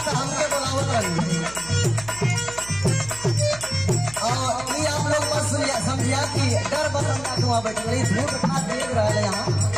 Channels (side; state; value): right; noise; hum, 17 dB below the sound